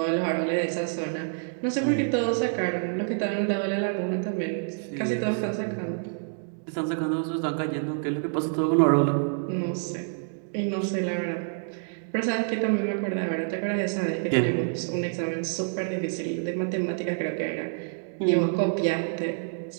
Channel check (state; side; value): silent; left; digital silence